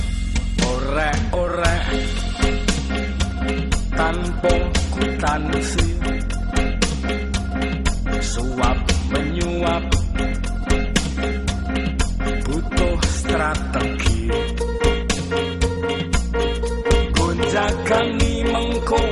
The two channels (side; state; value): both; identical; correlation 1.00